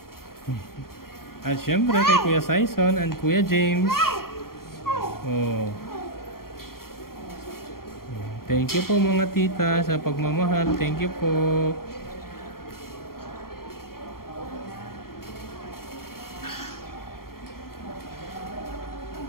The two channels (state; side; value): late; right; 0.93 ms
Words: At syempre kay Kuya Saison and Kuya James. Oh. Thank you po mga tita sa pagmamahal. Thank you po.